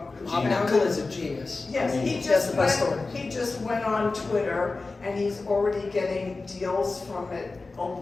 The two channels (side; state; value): right; quieter; 3.7 dB